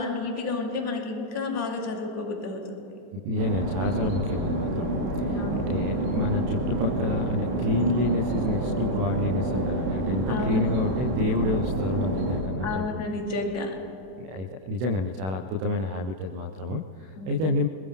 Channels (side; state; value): left; late; 32 ms